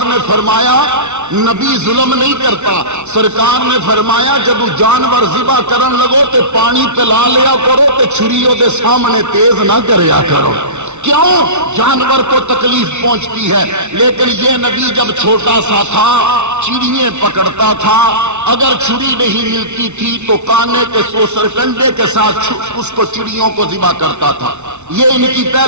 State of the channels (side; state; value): left; late; 0.82 ms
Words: نے فرمایا نبی ظلم نہیں کرتا، سرکار نے فرمایا جب جانور ذبح کرن لگو تے پانی پلا لیا کرو تے چھریوں دے سامنے تیز نہ کریا کرو۔ کیوں؟ جانور کو تکلیف پہنچتی ہے۔ لیکن یہ نبی جب چھوٹا سا تھا چڑیاں پکڑتا تھا، اگر چھری نہیں ملتی تھی تو کانے کے سوسر کنڈے کے ساتھ اس کو چڑیوں کو ذبح کرتا تھا۔ یہ ان کی